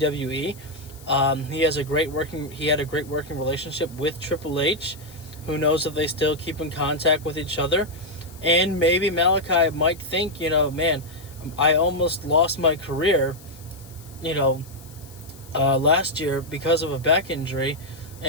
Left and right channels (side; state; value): left; noise; hiss, 22 dB below the sound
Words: He had a great working relationship with Triple H. Who knows if they still keep in contact with each other. And maybe Malakai might think, man, I almost lost my career, last year because of a back injury.